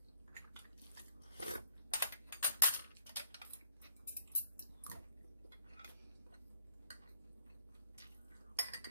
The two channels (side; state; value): both; inverted; correlation -0.66